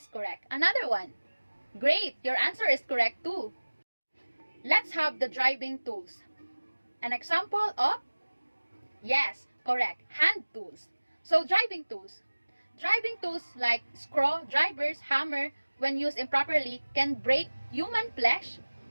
correct. Another one. Great, your answer is correct too. Let's have the driving tools. An example of? Yes, correct. Hand tools. So driving tools. Driving tools like screwdrivers, hammer, when used improperly, can break human flesh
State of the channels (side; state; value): both; inverted; correlation -1.00